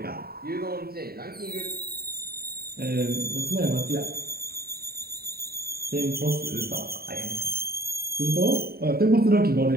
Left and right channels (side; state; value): left; late; 0.45 ms